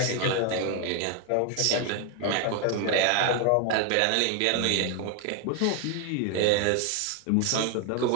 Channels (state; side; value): different; both; correlation 0.01